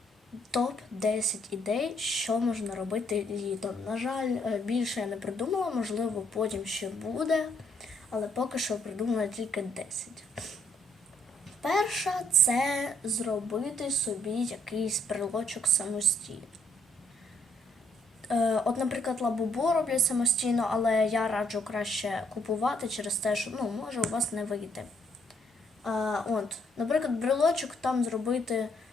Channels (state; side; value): normal; both; correlation 0.70